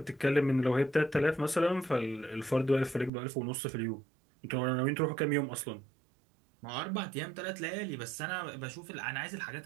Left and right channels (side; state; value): left; drops out; at 3.1 s